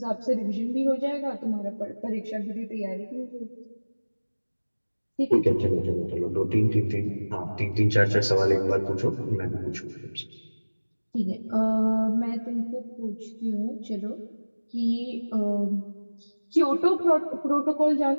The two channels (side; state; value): both; inverted; correlation -1.00